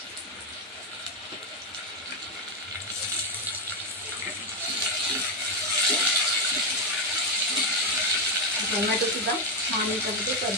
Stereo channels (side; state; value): both; normal; correlation 0.06